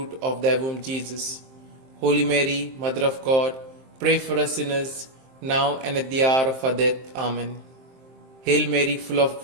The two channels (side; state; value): left; late; 23 ms